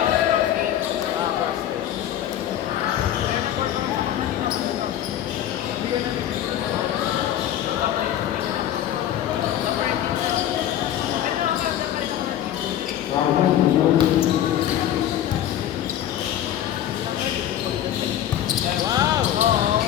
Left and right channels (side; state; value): right; quieter; 11.4 dB